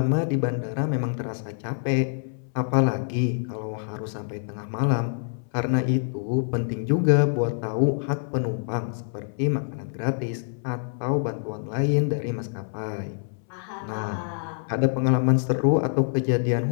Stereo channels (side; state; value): right; silent; 61 dB below the other